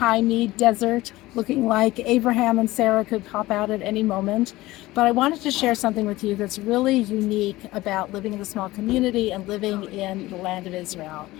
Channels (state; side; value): quieter; right; 18.3 dB